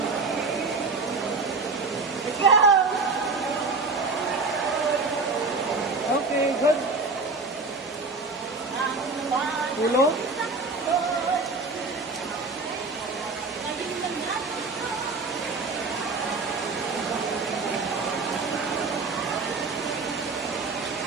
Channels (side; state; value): left; quieter; 3.8 dB